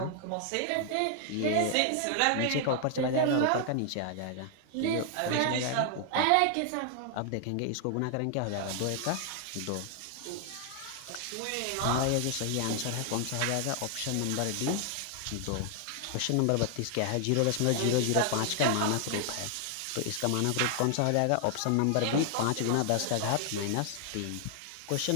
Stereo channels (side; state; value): both; different; correlation 0.00